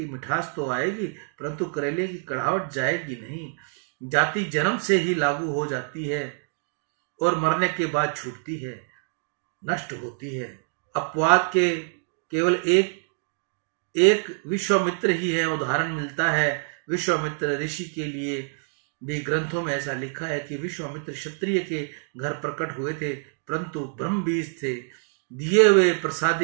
मिठास तो आएगी, परंतु करेले की कड़वाहट जाएगी नहीं। जाति जन्म से ही लागू हो जाती है और मरने के बाद छूटती है, नष्ट होती है। अपवाद के केवल एक विश्वामित्र ही है, उदाहरण मिलता है। विश्वामित्र ऋषि के लिए भी ग्रंथों में ऐसा लिखा है कि विश्वामित्र क्षत्रिय के घर प्रकट हुए थे, परंतु ब्रह्म बीज थे। दिए हुए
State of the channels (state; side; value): silent; left; 61 dB below the other